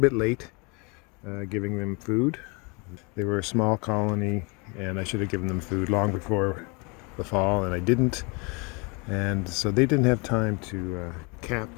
late giving them food. They were a small colony, and I should have given them food long before the fall, and I didn't. And so they didn't have time to cap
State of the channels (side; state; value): right; quieter; 30.3 dB